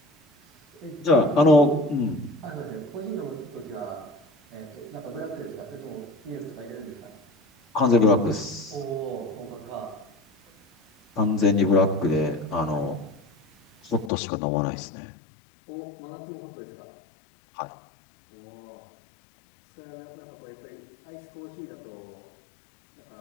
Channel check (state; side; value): drops out; right; at 14.1 s